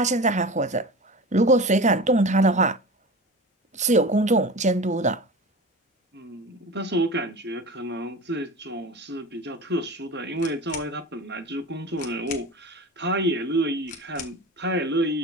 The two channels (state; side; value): normal; both; correlation 0.32